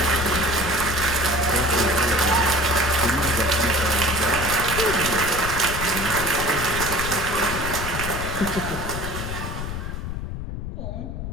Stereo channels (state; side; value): noise; left; rumble, 6 dB below the sound